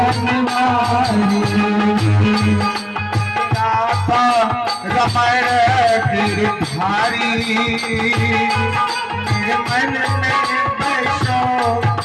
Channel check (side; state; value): both; identical; correlation 1.00